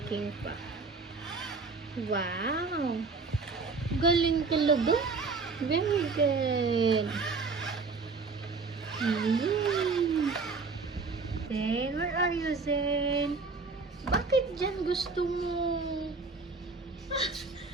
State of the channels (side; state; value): left; quieter; 4.3 dB